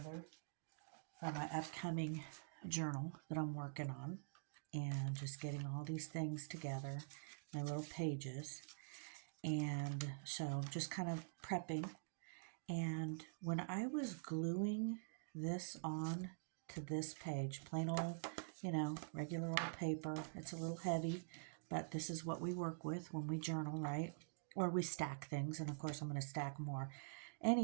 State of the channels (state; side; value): silent; left; digital silence